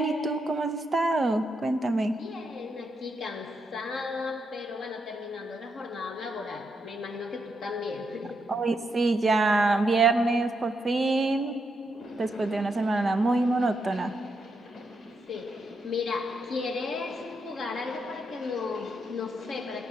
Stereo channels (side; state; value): both; normal; correlation 0.81